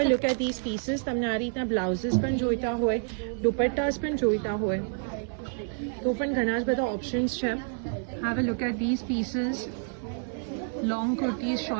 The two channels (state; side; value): silent; left; 59 dB below the other